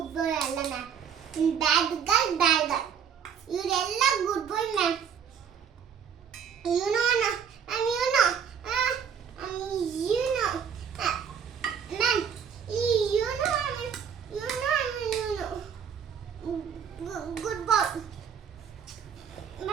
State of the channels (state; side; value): quieter; left; 7.5 dB